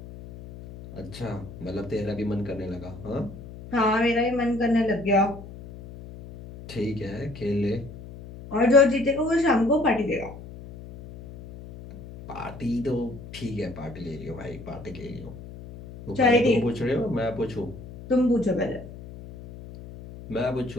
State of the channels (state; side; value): noise; left; hum, 14 dB below the sound